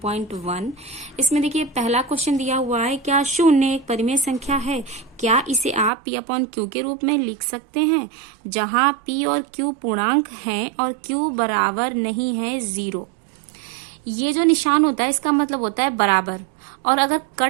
इसमें देखिए पहला क्वेश्चन दिया हुआ है, क्या शून्य एक परिमेय संख्या है? क्या इसे आप P/Q के रूप में लिख सकते हैं, जहां P और Q पूर्णांक हैं और Q बराबर नहीं है 0। ये जो निशान होता है इसका मतलब होता है बराबर, और अगर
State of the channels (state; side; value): drops out; left; at 5.9 s